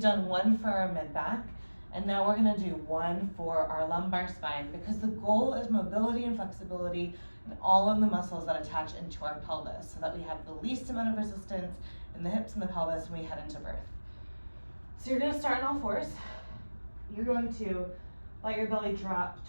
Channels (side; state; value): both; inverted; correlation -1.00